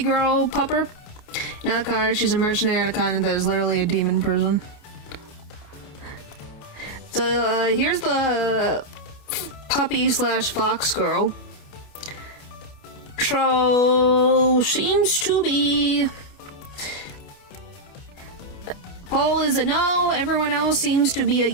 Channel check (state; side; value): late; right; 29 ms